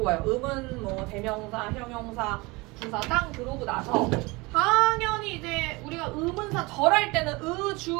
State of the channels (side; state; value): left; quieter; 24.4 dB